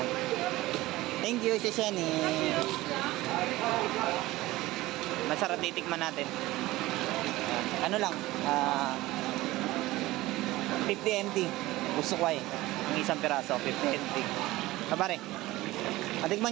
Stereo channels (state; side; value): quieter; left; 18.2 dB